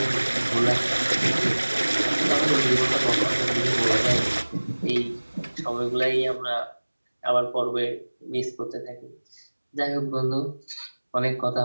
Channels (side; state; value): both; inverted; correlation -1.00